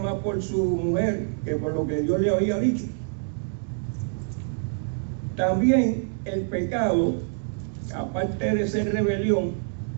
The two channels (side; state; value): left; silent; digital silence